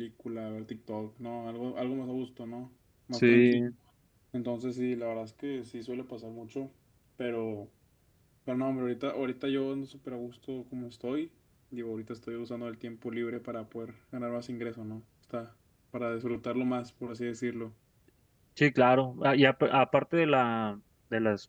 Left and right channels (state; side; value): identical; both; correlation 1.00